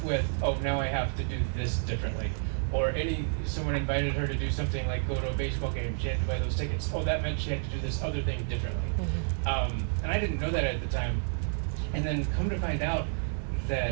with, oh, now I have to do this differently. Or someone invited her to do something like go to a baseball game, she had to buy those tickets. Oh, that meant she had to do this other thing differently. And I didn't know that at the time. And then come to find out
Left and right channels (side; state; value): left; silent; 58 dB below the other